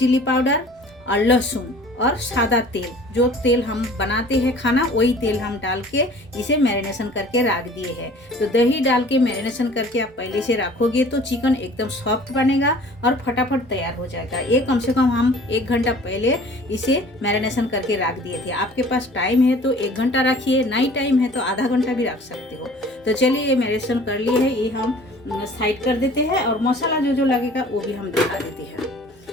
पाउडर और लहसुन और सादा तेल। जो तेल हम बनाते हैं खाना वही तेल हम डाल के इसे मैरिनेशन करके रख दिए हैं। तो दही डाल के मैरिनेशन करके आप पहले से रखोगे तो चिकन एकदम सॉफ्ट बनेगा और फटाफट तैयार हो जाएगा। ये कम से कम हम 1 घंटा पहले इसे मैरिनेशन करके रख दिए थे। आपके पास टाइम है तो 1 घंटा रखिए, नहीं टाइम है तो आधा घंटा भी रख सकते हो। तो चलिए ये मैरिनेशन कर लिए है, ये हम साइड कर देते हैं और मसाला जो जो लगेगा वो भी हम दिखा देते हैं।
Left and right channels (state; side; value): normal; both; correlation 0.48